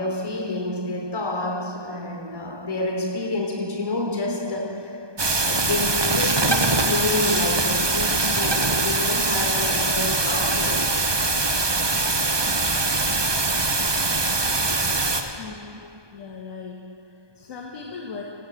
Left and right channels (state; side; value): late; left; 1.2 ms